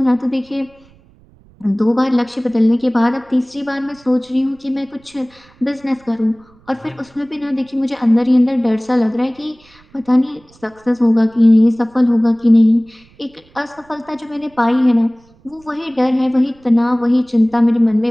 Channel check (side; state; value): right; noise; rumble, 30 dB below the sound